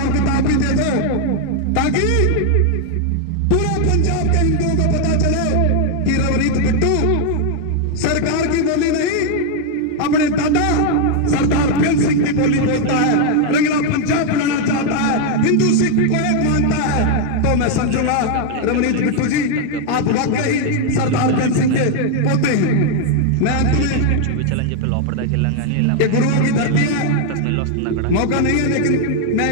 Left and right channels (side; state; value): both; different; correlation 0.00